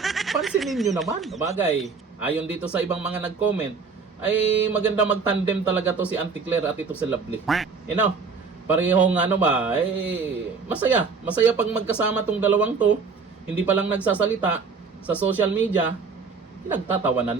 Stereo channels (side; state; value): left; quieter; 5.0 dB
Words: pansinin nyo naman. Bagay, ayon dito sa ibang mga nag-comment, ay maganda mag-tandem talaga to si Auntie Claire at ito si Lovely. Parehong masaya. Masaya pag magkasama tong dalawang to, hindi pa lang nagsasalita sa social media,